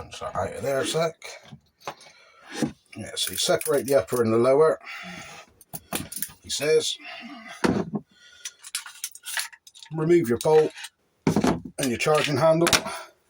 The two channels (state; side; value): identical; both; correlation 1.00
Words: that out of there a sec. Yeah, so you separate the upper and the lower, he says. Remove your bolt and your charging handle,